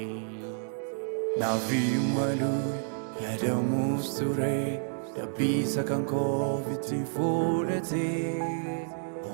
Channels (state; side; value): silent; left; digital silence